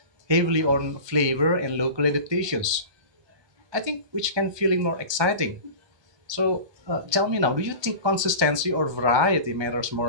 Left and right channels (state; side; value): late; left; 1.3 ms